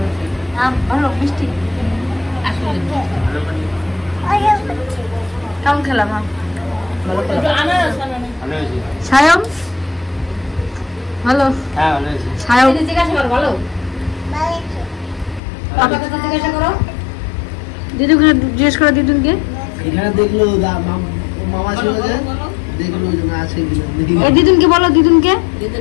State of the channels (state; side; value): drops out; right; at 15.4 s